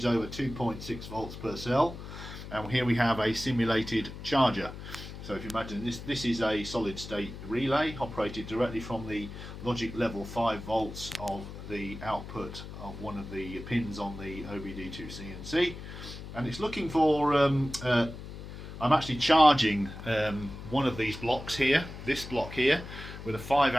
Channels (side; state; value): left; noise; hum, 11 dB below the sound